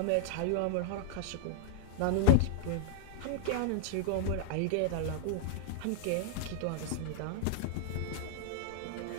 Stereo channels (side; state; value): both; different; correlation -0.01